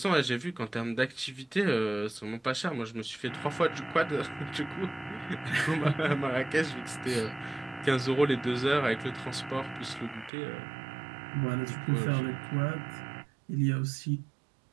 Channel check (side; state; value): left; drops out; at 10.3 s